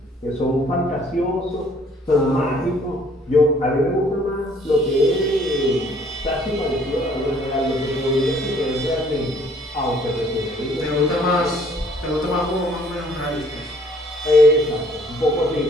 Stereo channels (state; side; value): normal; both; correlation 0.61